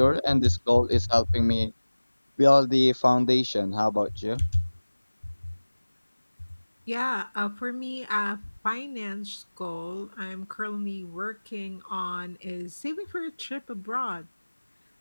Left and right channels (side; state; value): both; inverted; correlation -1.00